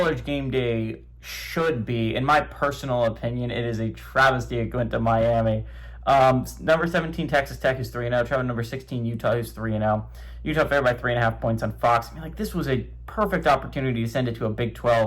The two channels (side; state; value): both; identical; correlation 1.00